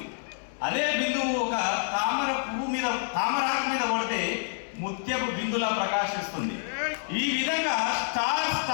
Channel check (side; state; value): right; silent; 59 dB below the other